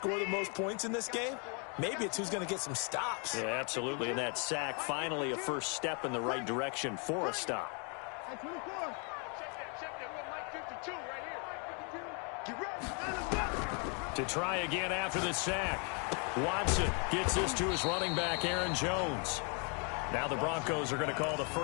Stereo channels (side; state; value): right; quieter; 37.4 dB